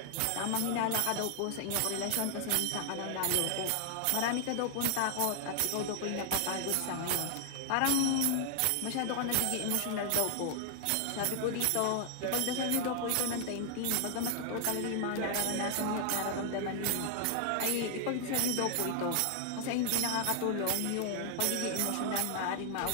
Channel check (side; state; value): both; different; correlation 0.00